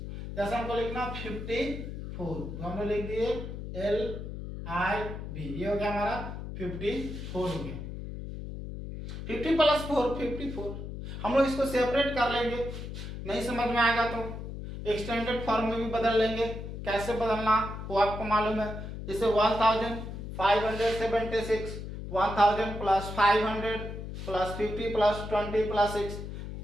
जैसे हमको लिखना 54 तो हम लोग लिख दिए एल आई बी, ये हो गया हमारा 54 हो गया। 50 प्लस 4 54। हम लोग इसको सेपरेट कर लेंगे, नहीं समझ में आएगा तो एक्सटेंडेड फॉर्म में भी बदल लेंगे। कैसे बदलना वो आपको मालूम है। जैसे 1576 1000 प्लस 500 प्लस 50 प्लस 20 प्लस 6,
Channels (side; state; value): left; noise; hum, 8 dB below the sound